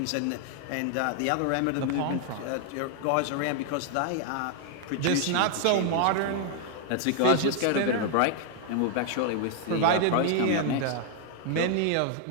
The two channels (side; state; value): both; different; correlation 0.00